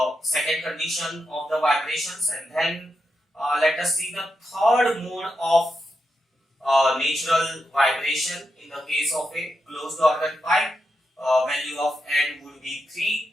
second condition of the vibrations, and then let us see the third mode of natural vibration in the case of a closed organ pipe. Value of n would be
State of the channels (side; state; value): both; normal; correlation 0.86